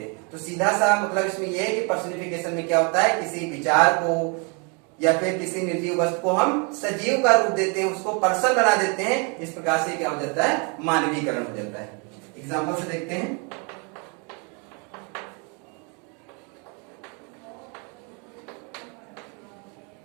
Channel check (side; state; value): left; quieter; 34.6 dB